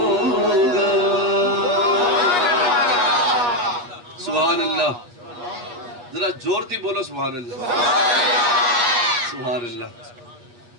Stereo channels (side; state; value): left; late; 8.4 ms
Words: سبحان اللہ ذرا زور تھی بولو سبحان اللہ سبحان